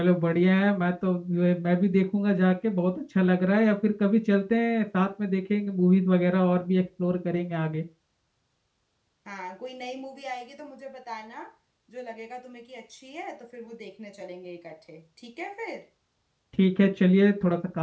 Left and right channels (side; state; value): both; identical; correlation 1.00